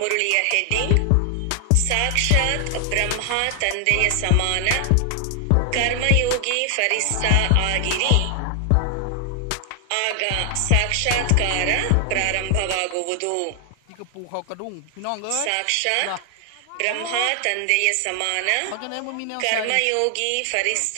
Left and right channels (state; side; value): different; both; correlation 0.00